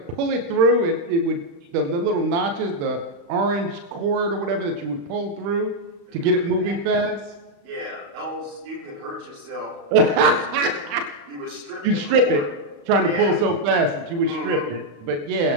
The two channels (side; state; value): left; late; 35 ms